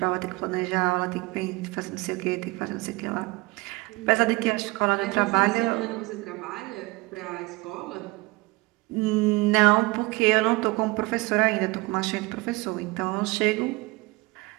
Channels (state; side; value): quieter; left; 22.9 dB